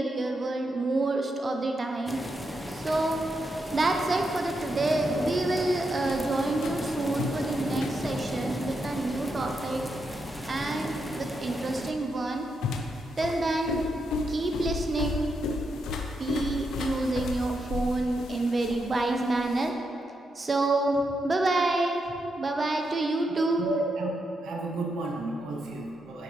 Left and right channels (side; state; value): both; normal; correlation 0.83